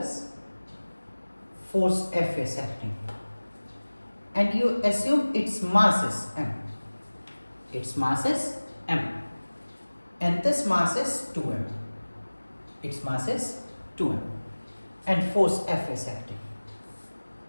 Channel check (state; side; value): inverted; both; correlation -1.00